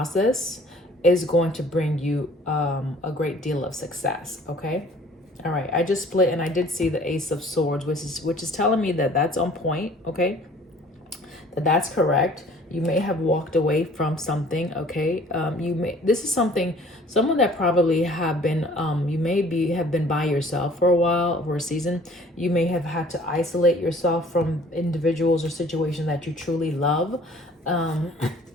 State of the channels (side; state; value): both; normal; correlation 0.53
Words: is going to bring you a great deal of success, okay? All right, I just split and I did see the Ace of Swords, which is telling me that that's on point, okay? That's correct. You may have walked away from something, okay? This is someone that probably have been, have been by yourself for a while, for a season. You may have had to isolate yourself from individuals or situations that you truly love,